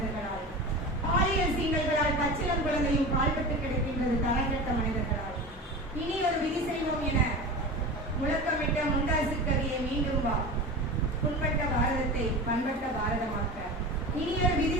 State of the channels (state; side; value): normal; both; correlation 0.30